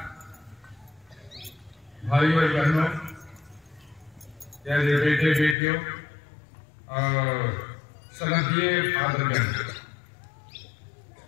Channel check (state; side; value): drops out; right; at 5.6 s